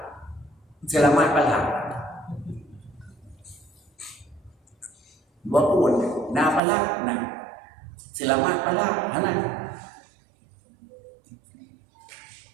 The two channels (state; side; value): drops out; left; at 6.6 s